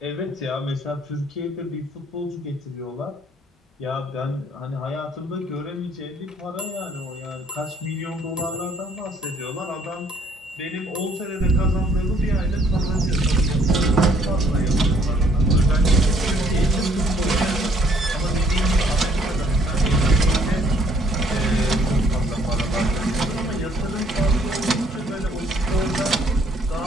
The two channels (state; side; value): normal; both; correlation 0.63